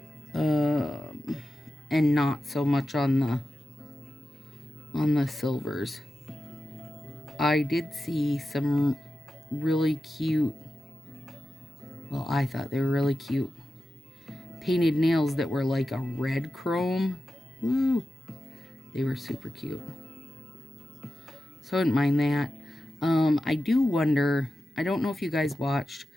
and not so much on the silvers. I did see some really cute, well, I thought they were really cute painted nails that were like a red chrome. Woo! They were super cute. So I didn't mind that. I do wonder, I don't know if you guys watched,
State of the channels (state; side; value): normal; both; correlation 0.91